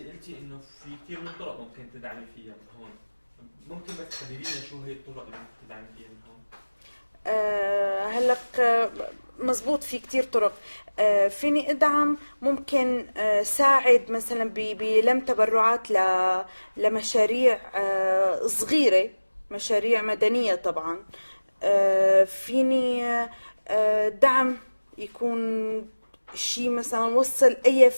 انه في كثير من الطرق ممكن تدعمي فيها من هون. ممكن بس تحددي لنا شو هي الطرق اللي ممكن تدعمي فيها من هون؟ هلق مزبوط، في كتير طرق. فيني ادعم، ممكن ساعد مثلا بلم تبرعات لمشاريع صغيرة، مشاريع مدنية طبعا. فيني دعم يكون شيء مثلا وصل اي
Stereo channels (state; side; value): inverted; both; correlation -1.00